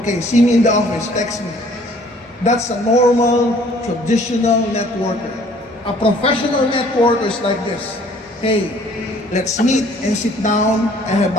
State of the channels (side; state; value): both; normal; correlation 0.57